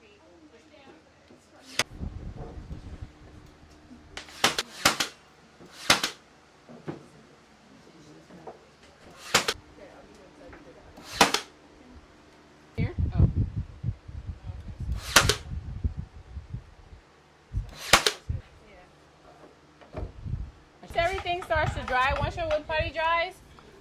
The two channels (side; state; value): both; identical; correlation 1.00